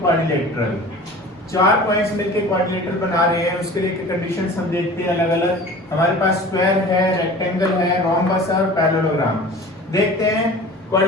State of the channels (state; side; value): normal; both; correlation 0.40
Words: 4 पॉइंट्स मिलकर क्वाड्रिलेटरल बना रहे हैं, उसके लिए कंडीशंस हम देखते हैं अलग अलग। हमारे पास स्क्वायर है, रेक्टेंगल है, रोम्बस और पैरेललोग्राम। देखते हैं